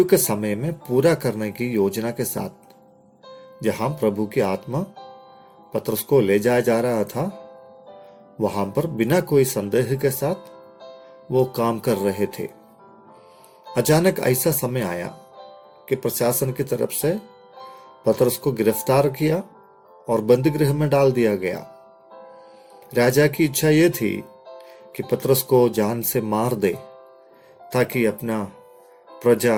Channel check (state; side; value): identical; both; correlation 1.00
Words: के समय में पूरा करने की योजना के साथ जहां प्रभु की आत्मा पतरस को ले जाया जा रहा था, वहां पर बिना कोई संदेह के साथ वो काम कर रहे थे। अचानक ऐसा समय आया कि प्रशासन की तरफ से पतरस को गिरफ्तार किया और बंदी गृह में डाल दिया गया। राजा की इच्छा यह थी कि पतरस को जान से मार दे ताकि अपना प्रजा